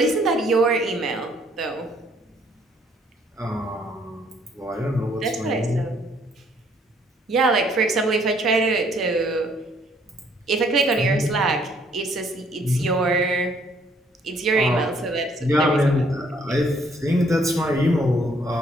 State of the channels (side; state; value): both; normal; correlation 0.65